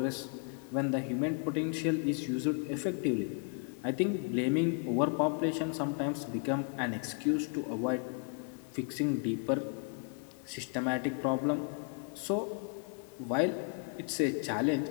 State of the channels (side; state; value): right; quieter; 39.3 dB